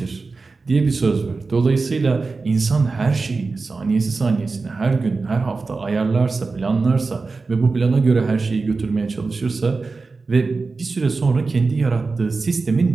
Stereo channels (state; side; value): quieter; left; 4.0 dB